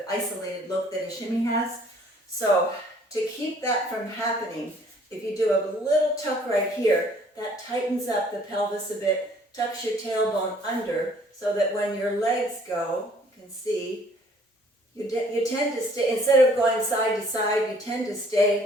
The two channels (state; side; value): normal; both; correlation 0.58